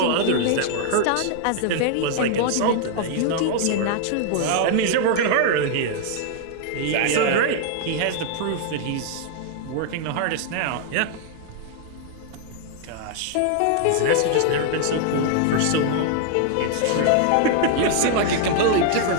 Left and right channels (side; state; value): both; different; correlation 0.00